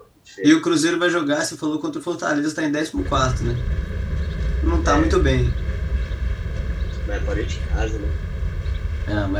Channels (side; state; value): both; identical; correlation 1.00